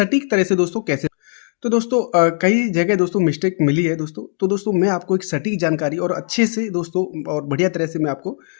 तरह से दोस्तों कैसे, तो दोस्तों कई जगह दोस्तों मिस्टेक मिली है दोस्तों। तो दोस्तों मैं आपको एक सटीक जानकारी और अच्छे से दोस्तों और बढ़िया तरह से मैं आपको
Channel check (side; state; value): right; silent; 63 dB below the other